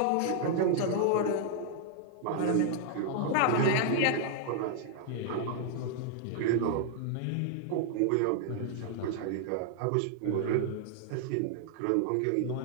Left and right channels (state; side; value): different; both; correlation -0.01